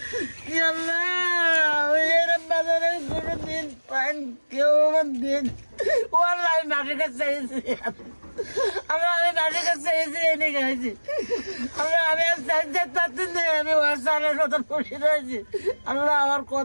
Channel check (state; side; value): inverted; both; correlation -1.00